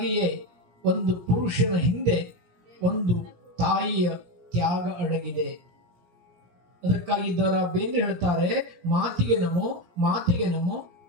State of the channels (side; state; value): left; late; 17 ms